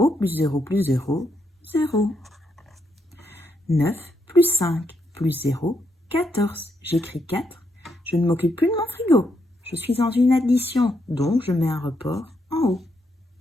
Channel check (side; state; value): both; normal; correlation 0.79